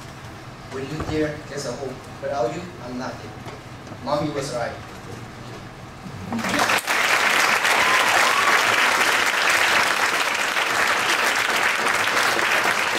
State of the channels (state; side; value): identical; both; correlation 1.00